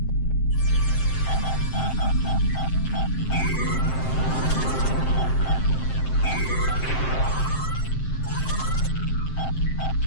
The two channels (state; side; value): late; right; 7.7 ms